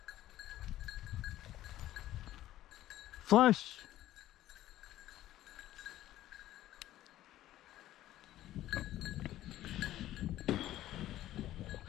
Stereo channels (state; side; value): quieter; right; 14.0 dB